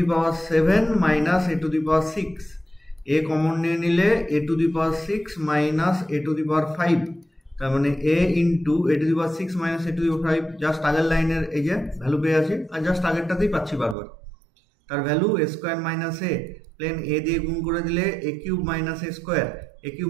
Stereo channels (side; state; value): left; drops out; at 14.0 s